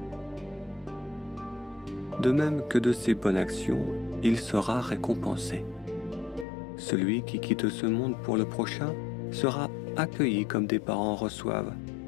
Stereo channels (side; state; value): right; drops out; at 6.5 s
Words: De même que de ses bonnes actions, il sera récompensé. Celui qui quitte ce monde pour le prochain sera accueilli comme des parents reçoivent